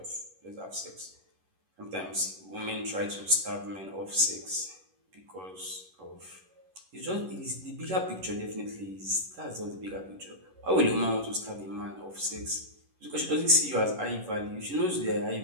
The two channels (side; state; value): left; late; 11 ms